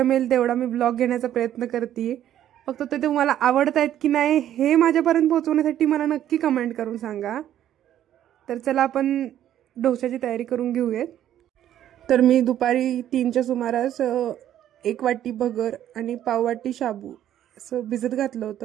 तेवढा मी ब्लॉग घेण्याचा प्रयत्न करते। फक्त ते तुम्हाला आवडत आहेत की नाही हे माझ्यापर्यंत पोहोचवण्यासाठी मला नक्की कमेंट करून सांगा। तर चला आपण डोश्याची तयारी करून घेऊयात। तर मी दुपारी 3च्या सुमारास 1 वाटी भगर आणि पाव वाटी शाबू असं भिजत घातलं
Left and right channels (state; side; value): quieter; left; 11.4 dB